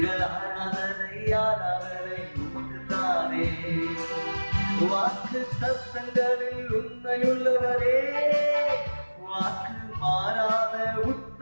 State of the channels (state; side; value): inverted; both; correlation -1.00